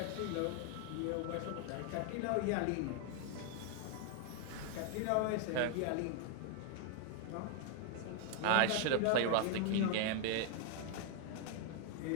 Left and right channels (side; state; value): both; different; correlation 0.00